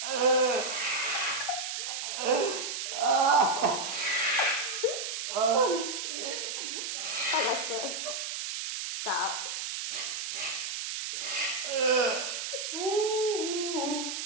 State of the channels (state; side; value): noise; right; hiss, 4 dB below the sound